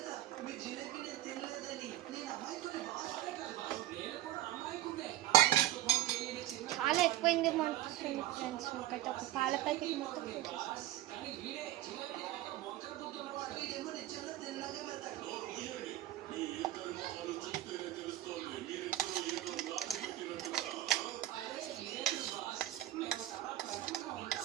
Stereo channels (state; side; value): quieter; left; 14.1 dB